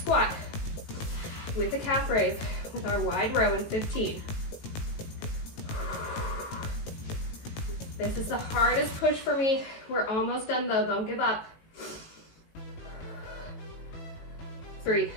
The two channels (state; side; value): late; right; 18 ms